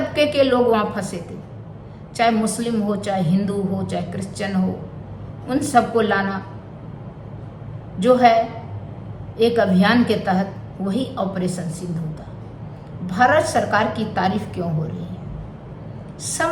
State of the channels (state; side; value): identical; both; correlation 1.00